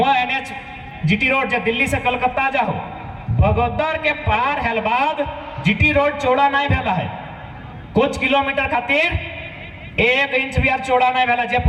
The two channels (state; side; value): identical; both; correlation 1.00